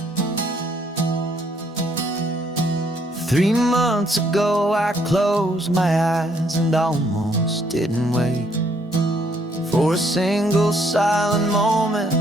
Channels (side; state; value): both; normal; correlation 0.68